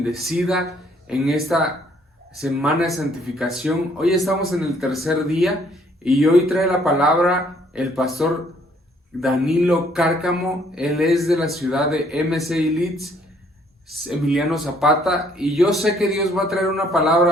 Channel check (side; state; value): both; normal; correlation 0.64